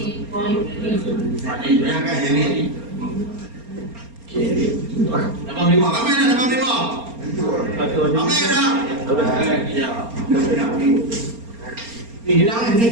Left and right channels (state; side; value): late; left; 4.3 ms